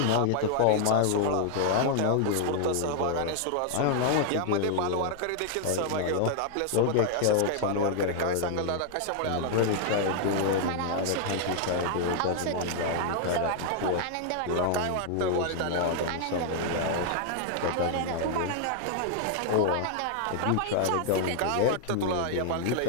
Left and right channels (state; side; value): different; both; correlation 0.00